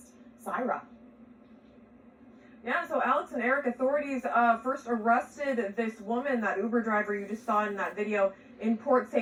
Syra. Yeah, so Alex and Eric, authorities first arrested this woman, that Uber driver you just saw in that video, in Port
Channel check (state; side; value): identical; both; correlation 1.00